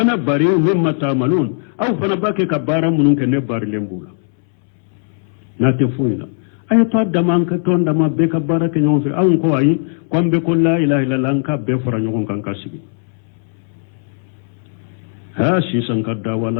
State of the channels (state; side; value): silent; right; 67 dB below the other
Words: bari'u mimma ta'malun au fana bake kabara mununke ne bari lembula nate fuila ay to daman ka to ndama be kabara ke nyon fi au ko ayi kwambe ko la ilaha illallah ka be fara nyon kan kasibi ha shi sankadda